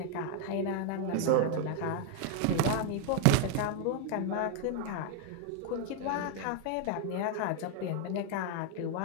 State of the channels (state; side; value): different; both; correlation 0.01